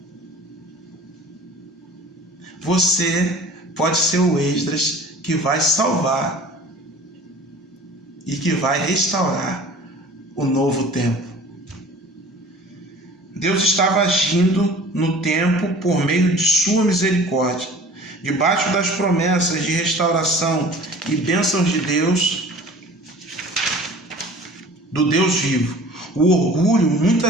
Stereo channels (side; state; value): both; normal; correlation 0.45